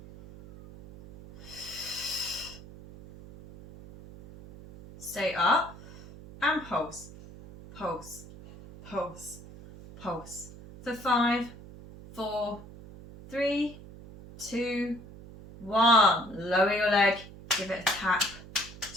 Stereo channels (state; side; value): noise; right; hum, 17 dB below the sound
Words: Stay up and pulse, pulse, pulse, pulse. For 5, 4, 3, 2, 1. Lower your leg, give it a tap,